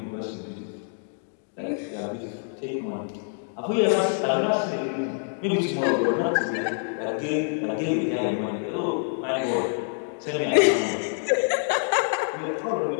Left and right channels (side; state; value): right; silent; 61 dB below the other